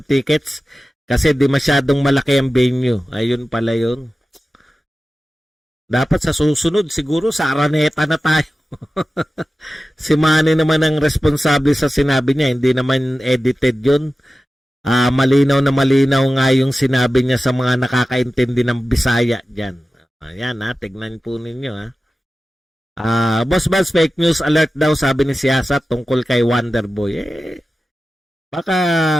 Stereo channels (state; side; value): normal; both; correlation 0.94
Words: tickets kasi di masyadong malaki ang venue. Ayun pala yun. Dapat sa susunod, siguro sa Araneta na tayo. Si Manny naman ang responsable sa sinabi niya. Hindi naman edited yun. Malinaw na malinaw nga yung sinabi niya sa mga nakakaintindi ng Bisaya dyan. Ayan tignan po ninyo Boss Buzz, fake news alert daw sabi ni Siyasat tungkol kay Wonderboy. Baka